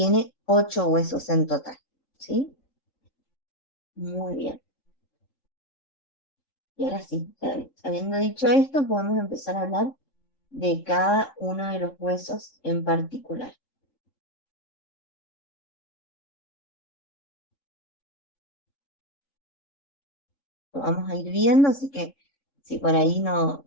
8 huesos en total, ¿sí? Muy bien. Y ahora sí, habiendo dicho esto, podemos empezar a hablar de cada uno de los huesos en particular. Lo vamos a ir viendo, así que si por ahí no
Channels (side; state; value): right; late; 3.7 ms